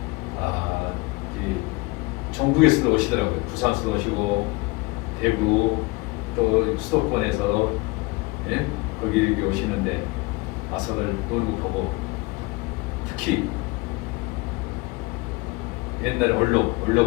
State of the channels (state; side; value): quieter; right; 24.7 dB